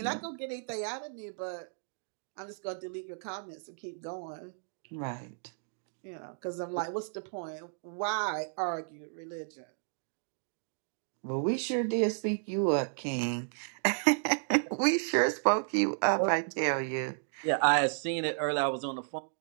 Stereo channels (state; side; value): silent; left; digital silence